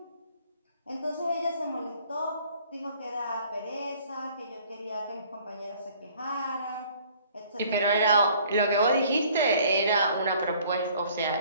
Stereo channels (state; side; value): inverted; both; correlation -0.56